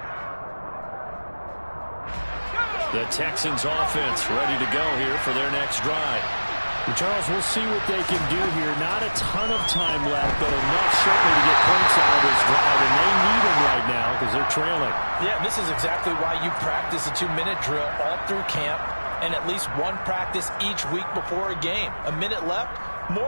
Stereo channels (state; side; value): inverted; both; correlation -1.00